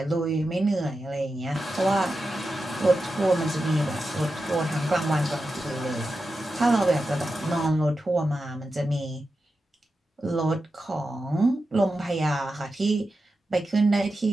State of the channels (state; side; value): normal; both; correlation 0.90